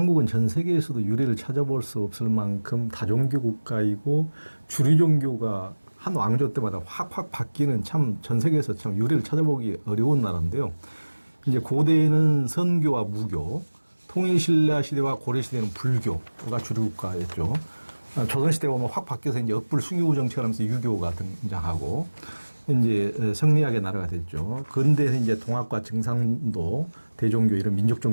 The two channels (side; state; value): both; inverted; correlation -1.00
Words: 전 세계에서도 유래를 찾아볼 수 없을 만큼 다종교 국가이고 주류 종교가 한 왕조 때마다 확확 바뀌는 참 전 세계에서 참 유래를 찾아보기 어려운 나라인데요. 이제 고대에는 선교와 무교, 통일신라 시대와 고려 시대는 불교가 주류 국가였죠. 조선 시대 보면 확 바뀌어서 이제 억불 숭유 정책을 하면서 유교가 등장하고 이제 성리학의 나라가 됐죠. 근대에서 이제 동학과 증상도, 대종교 이런 민족